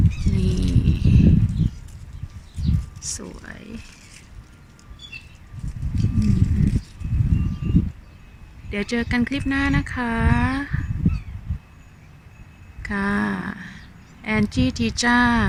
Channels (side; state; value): both; identical; correlation 1.00